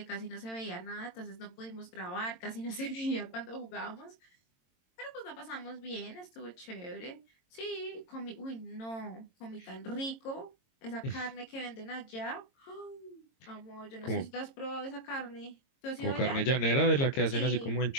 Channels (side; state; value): right; late; 22 ms